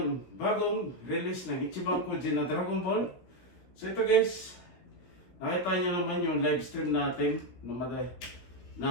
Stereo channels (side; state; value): right; late; 16 ms